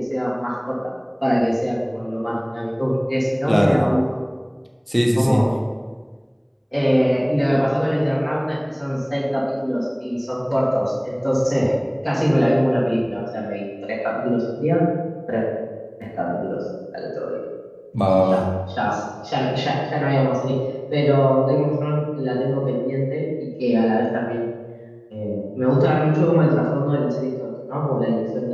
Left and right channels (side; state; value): both; identical; correlation 1.00